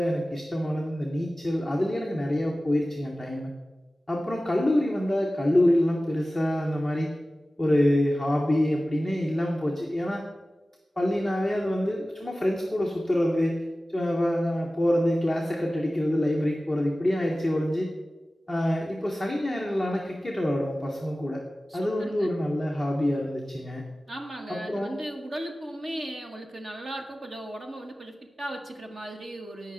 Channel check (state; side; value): normal; both; correlation 0.96